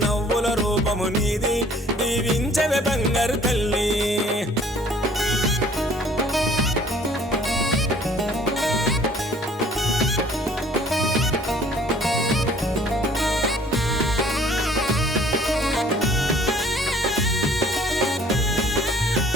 రూపము నీది దీవించవే బంగారు తల్లి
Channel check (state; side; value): normal; both; correlation 0.55